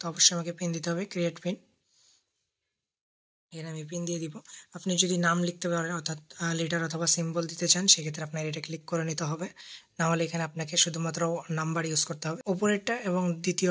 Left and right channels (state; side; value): identical; both; correlation 1.00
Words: অবশ্যই আমাকে পিন দিতে হবে, ক্রিয়েট পিন। এখানে আমি পিন দিয়ে দিব। আপনি যদি নাম লিখতে পারেন অর্থাৎ লেটার অথবা সিম্বল দিতে চান সেক্ষেত্রে আপনার এটা ক্লিক করে নিতে হবে, না হলে এখানে আপনাকে শুধুমাত্র নাম্বার ইউজ করতে হবে। ওপরেরটা এবং